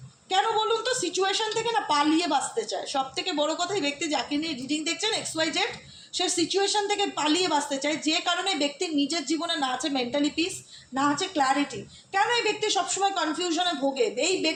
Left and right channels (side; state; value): both; identical; correlation 1.00